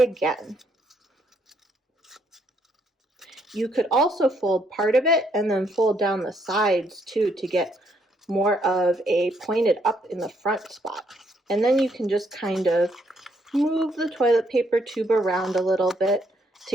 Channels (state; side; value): normal; both; correlation 0.72